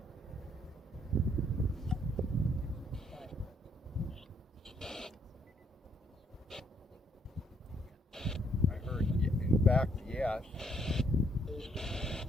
I heard, in fact, yes.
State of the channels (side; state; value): both; normal; correlation 0.70